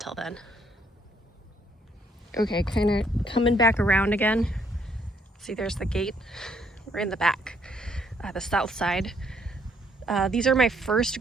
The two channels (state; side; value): normal; both; correlation 0.69